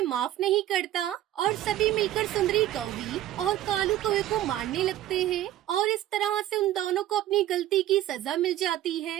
माफ नहीं करता और सभी मिलकर सुंदरी कौवी और कालू कौवे को मारने लगते हैं और इस तरह से उन दोनों को अपनी गलती की सजा मिल जाती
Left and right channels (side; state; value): left; quieter; 13.2 dB